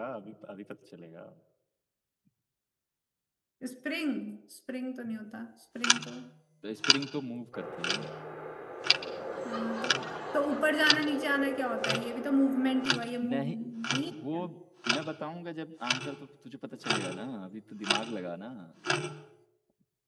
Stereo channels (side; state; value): both; identical; correlation 1.00